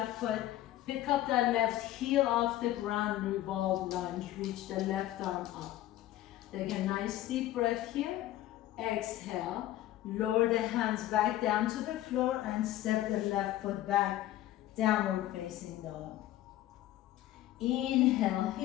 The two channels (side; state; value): right; quieter; 14.3 dB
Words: foot. Pick up that left heel off the ground, revolve lunge. Reach the left arm up. Take a nice deep breath here. Exhale, lower the hands back down to the floor and step the left foot back, downward facing dog. Inhale